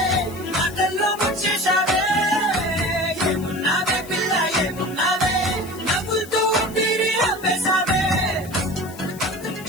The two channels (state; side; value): noise; left; hiss, 18 dB below the sound